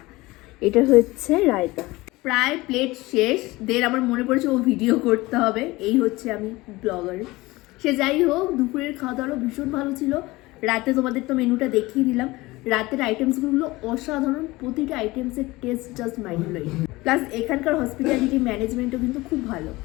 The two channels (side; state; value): right; quieter; 20.6 dB